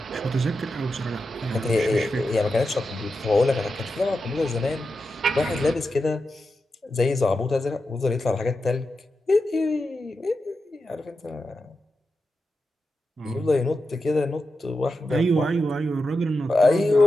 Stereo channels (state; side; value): normal; both; correlation 0.89